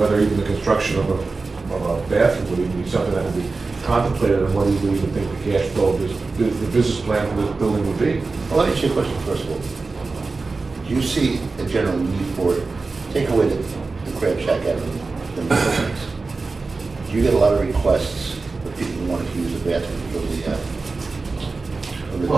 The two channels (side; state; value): left; quieter; 3.9 dB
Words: even the construction of a bathroom would even be something that would be contemplated, and what do you even think the cash flow, the business plan for this building would be? Well, let me ask you a question first of all. Do you see a general need for it? Take away the crab shack out of the buildings. Do you get a lot of requests for people who want to use the bathroom from the